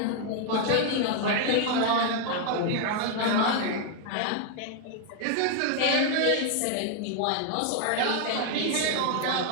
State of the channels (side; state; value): both; different; correlation 0.00